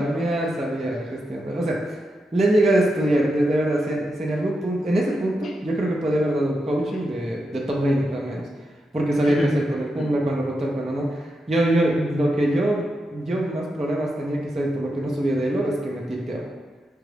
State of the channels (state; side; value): normal; both; correlation 0.86